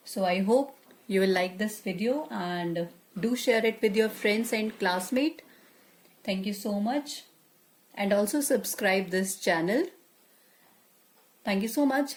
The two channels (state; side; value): identical; both; correlation 1.00